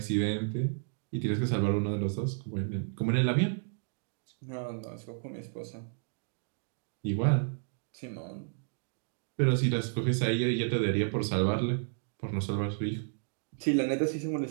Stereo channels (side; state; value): left; silent; digital silence